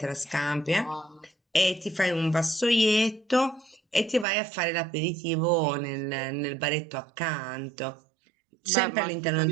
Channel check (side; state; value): left; drops out; at 4.2 s